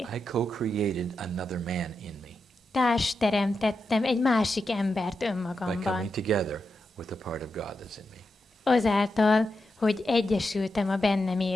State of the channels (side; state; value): both; normal; correlation 0.87